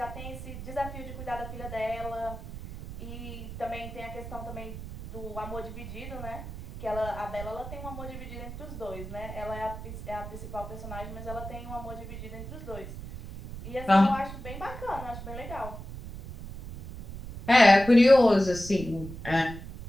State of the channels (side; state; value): right; noise; rumble, 10 dB below the sound